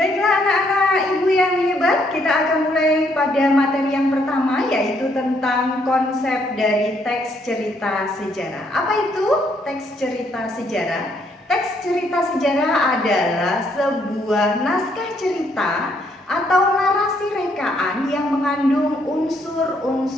anak-anak ibu yang hebat, kita akan mulai pada materi yang pertama, yaitu tentang konsep dari teks cerita sejarah. Apa itu teks cerita sejarah? Teks cerita sejarah adalah sebuah naskah cerita atau narasi rekaan yang mengandung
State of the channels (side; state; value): both; normal; correlation 0.70